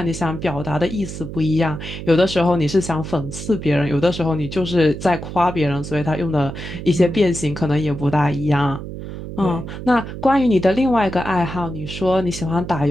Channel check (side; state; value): right; noise; hum, 9 dB below the sound